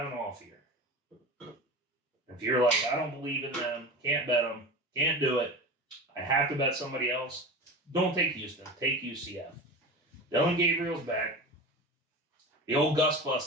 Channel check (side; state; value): both; normal; correlation 0.30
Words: an off year, if you're like, I don't believe in them, can't bet them, can't do it, I have to bet somebody else, don't take Houston, take UCF. Dylan Gabriel's back. The old Gus Bus